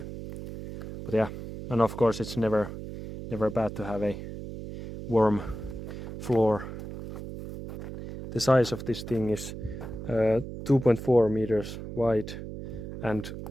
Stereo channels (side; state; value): right; noise; hum, 9 dB below the sound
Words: But yeah, and of course it's never bad to have a warm floor. The size of this thing is 2.4 meters wide and